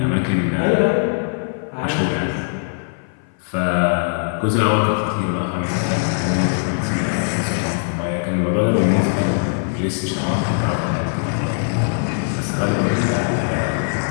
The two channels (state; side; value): silent; right; 58 dB below the other